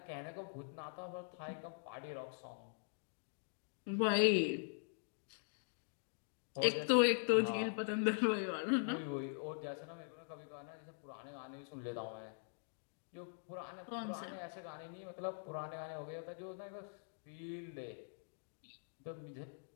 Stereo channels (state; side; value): silent; right; digital silence